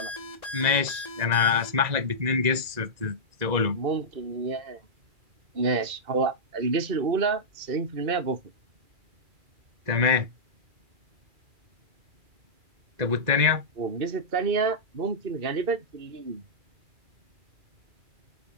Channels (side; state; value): left; late; 2.0 ms